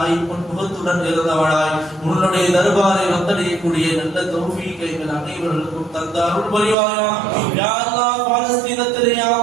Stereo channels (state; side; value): drops out; left; at 6.8 s